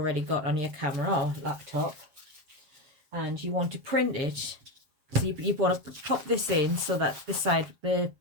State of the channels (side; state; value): left; late; 7.5 ms